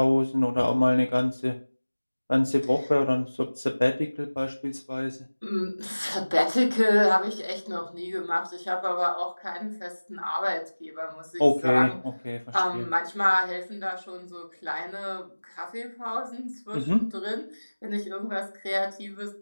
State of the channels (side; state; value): both; inverted; correlation -1.00